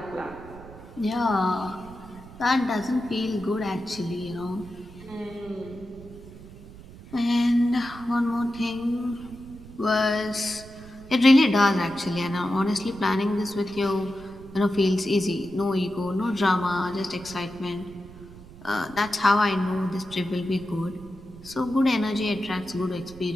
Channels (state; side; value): noise; right; rumble, 18 dB below the sound